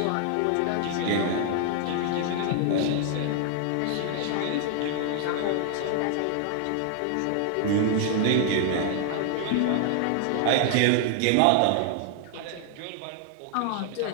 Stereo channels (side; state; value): both; different; correlation 0.00